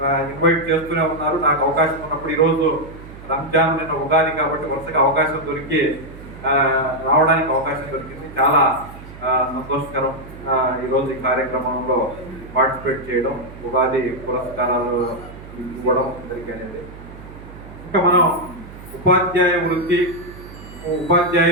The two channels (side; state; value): right; noise; hum, 16 dB below the sound